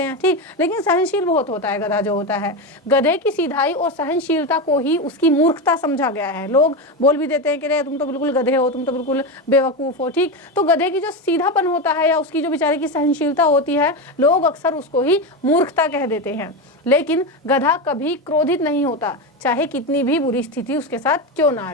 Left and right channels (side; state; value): both; normal; correlation 0.16